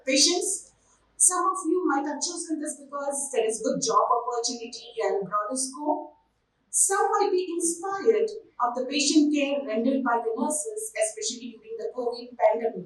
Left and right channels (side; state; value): both; identical; correlation 1.00